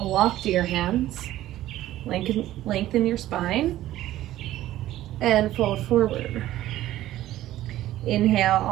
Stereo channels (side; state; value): left; quieter; 14.3 dB